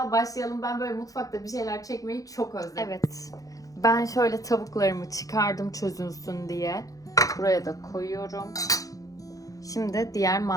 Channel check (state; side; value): late; right; 0.17 ms